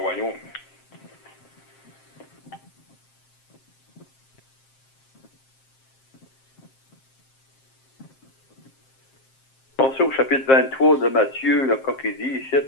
Pensez au chapitre 23 de Matthieu, là, quand il dit ici,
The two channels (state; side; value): late; right; 7.5 ms